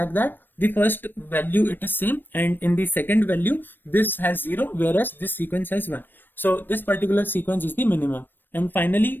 that the first value it is same, and in the second value this has 0 whereas this sequence has 1. So this particular sequence is the minimum, and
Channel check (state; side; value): late; right; 0.094 ms